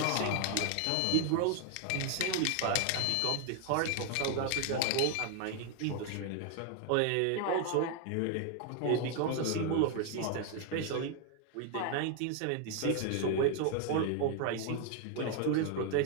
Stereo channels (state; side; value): different; both; correlation 0.00